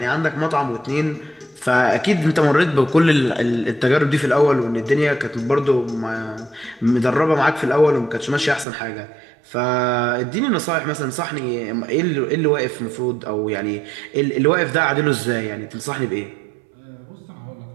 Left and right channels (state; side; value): drops out; left; at 8.7 s